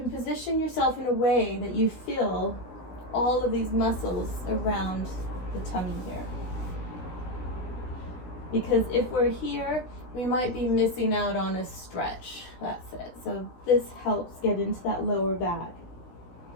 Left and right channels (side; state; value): right; late; 16 ms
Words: position yourself in a way that you feel all of these muscles around the tummy here. Because if we're here, we might be missing out on a stretch. That's it. So this helps get into that lower back.